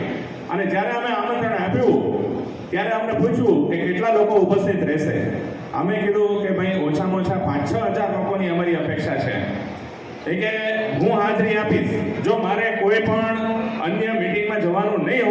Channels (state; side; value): identical; both; correlation 1.00